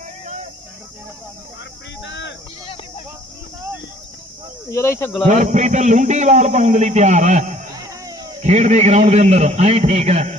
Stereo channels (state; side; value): normal; both; correlation 0.56